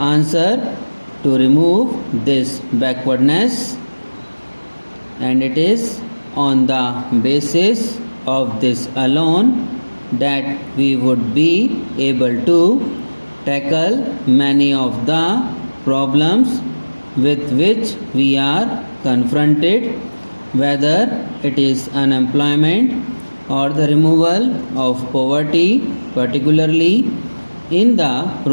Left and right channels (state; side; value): inverted; both; correlation -1.00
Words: to remove this backwardness, and it is on the basis of this alone that we would be able to tackle many of the problems with which we are confronted, whether it is unemployment or the removal of poverty, particularly in the